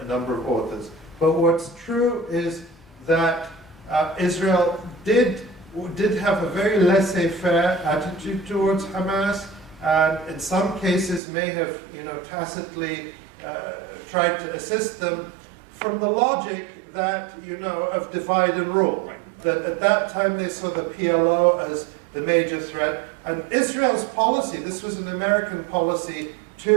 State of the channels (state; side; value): drops out; left; at 11.2 s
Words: a number of authors. But what's true is that Israel did have a very laissez-faire attitude towards Hamas, and in some cases may have, tacitly tried to assist them from the logic that, of divide and rule. That at that time they saw the PLO as the major threat. And Israel's policy, this was an American policy